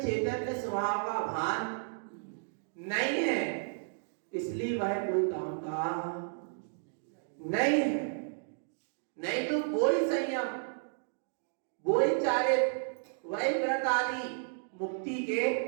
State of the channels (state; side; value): silent; left; digital silence